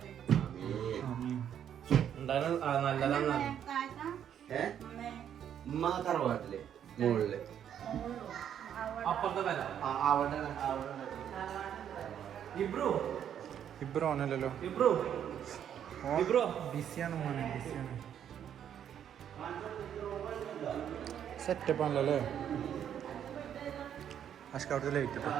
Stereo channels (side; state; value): left; quieter; 9.4 dB